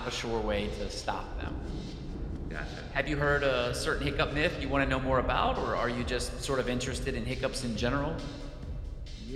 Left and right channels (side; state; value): both; identical; correlation 1.00